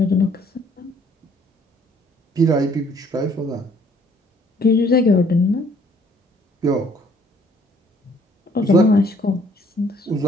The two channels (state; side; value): normal; both; correlation 0.61